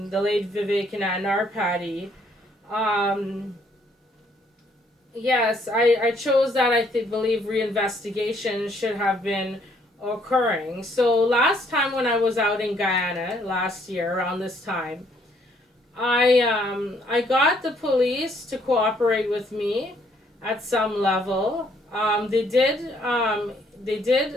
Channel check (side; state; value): both; normal; correlation 0.67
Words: late Vivekanand Narpati. Um, yes, I chose that. Believe reinvestigation should have been occurring. So last time when I was out in Guyana last year around this time, I got the police to cooperate with me at some level. They